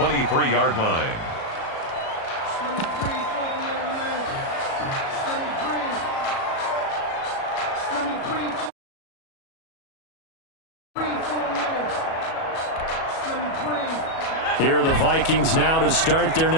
line. Here are the Vikings now to start their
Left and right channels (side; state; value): right; late; 37 ms